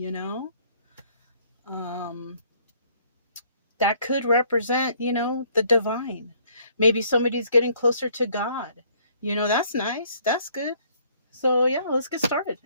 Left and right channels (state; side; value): inverted; both; correlation -0.62